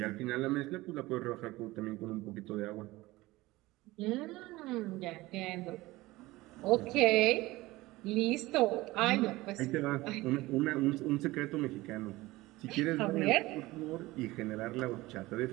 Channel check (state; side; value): quieter; left; 19.4 dB